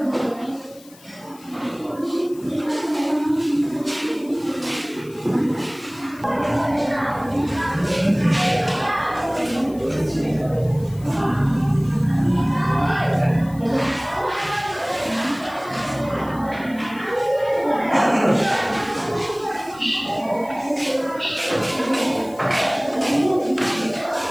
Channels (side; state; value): left; noise; hiss, 23 dB below the sound